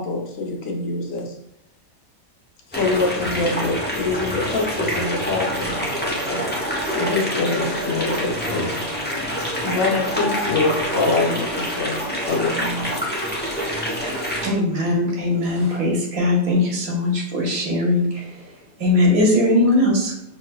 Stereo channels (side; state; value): both; normal; correlation -0.11